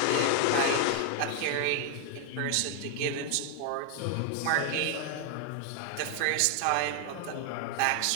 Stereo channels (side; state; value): both; different; correlation 0.00